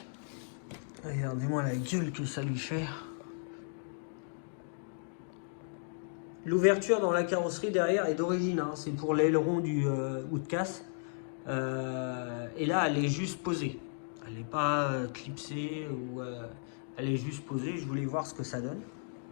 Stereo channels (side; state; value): right; silent; digital silence